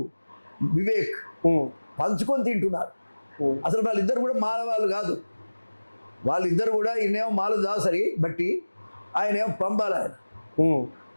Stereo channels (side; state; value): both; inverted; correlation -1.00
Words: వివేక్ పంచుకొని తింటున్నారు. అసలు వాళ్ళిద్దరు కూడా మాల వాళ్ళు కాదు. వాళ్ళిద్దరు కూడా ఈయనేమో మాల దాసరి బట్టి, ఆయనేమో పంబాల. ఆయన